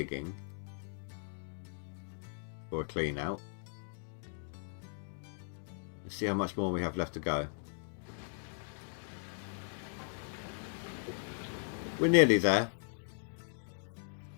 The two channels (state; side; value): silent; right; digital silence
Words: for a clean out. Let's see how much more we have left to go. We're nearly there.